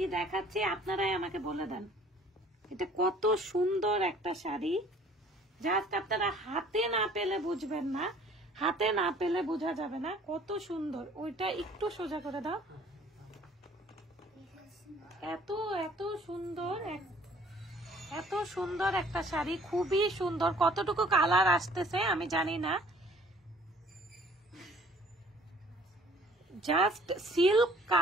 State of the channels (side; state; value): both; normal; correlation 0.55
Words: দেখাচ্ছি আপনারাই আমাকে বলে দেন। এটা কত সুন্দর একটা শাড়ি, জাস্ট আপনারা হাতে না পেলে বুঝবেন না, হাতে না পেলে বোঝা যাবে না কত সুন্দর। ওইটা একটু সোজা করে দাও। এত এত সুন্দর, এত সুন্দর একটা শাড়ি, খুবই সুন্দর। কতটুকু কালার আসতেছে আমি জানি না, জাস্ট সিল্ক